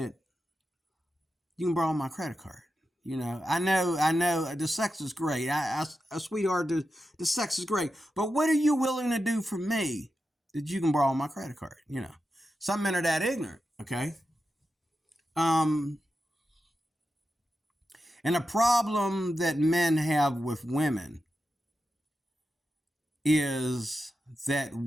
you can borrow my credit card? You know, I know the sex is great. Sweetheart, the sex is great. But what are you willing to do for me that you can borrow my credit card? You know, some men are that ignorant, okay? And a problem that men have with women is that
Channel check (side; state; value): both; normal; correlation 0.89